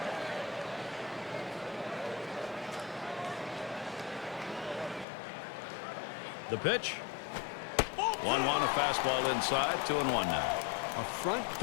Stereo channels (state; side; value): drops out; right; at 5.1 s